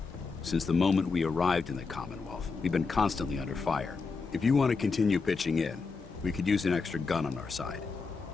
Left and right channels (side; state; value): right; quieter; 4.6 dB